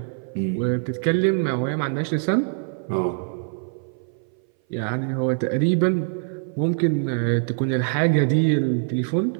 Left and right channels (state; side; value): silent; left; 59 dB below the other